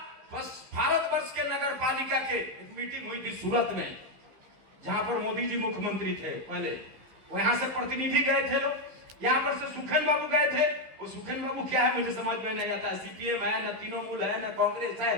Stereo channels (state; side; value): late; left; 15 ms